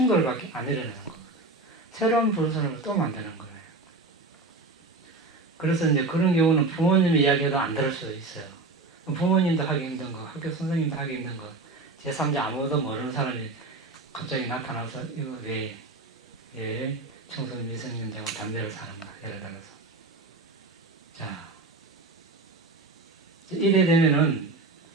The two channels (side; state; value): left; quieter; 3.3 dB